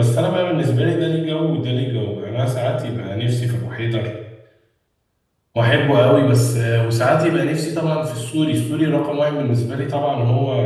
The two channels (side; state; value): both; identical; correlation 1.00